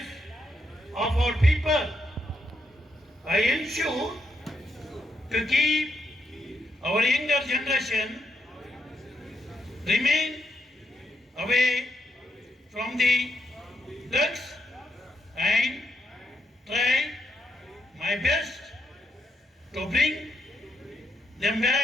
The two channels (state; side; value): normal; both; correlation 0.80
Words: of our people. I ensure to keep our younger generation remain away from the drugs and try my best to bring them